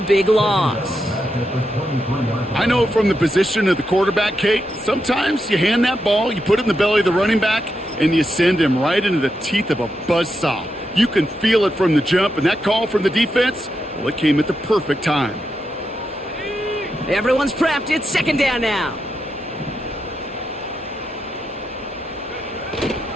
big loss. I know from the position of the quarterback, Kate, sometimes you hand that ball, you put it in the belly of the running back, and you send him right into the teeth of a buzzsaw. You can feel it from the jump, and that call from the defense, well, it came at the perfect time. Everyone's prepped. It's 2nd down now.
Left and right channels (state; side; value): normal; both; correlation 0.85